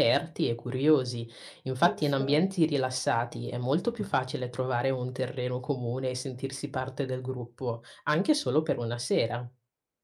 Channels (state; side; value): identical; both; correlation 1.00